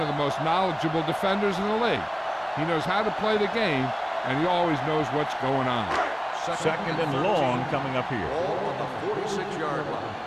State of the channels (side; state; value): both; identical; correlation 1.00